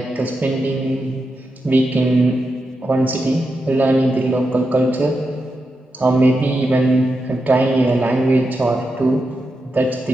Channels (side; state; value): both; normal; correlation 0.87